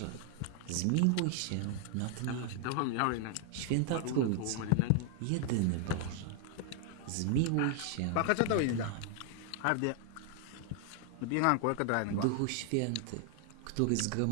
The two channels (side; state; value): both; different; correlation 0.00